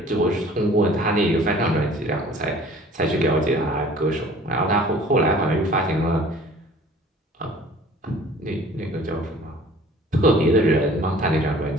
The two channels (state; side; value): normal; both; correlation 0.50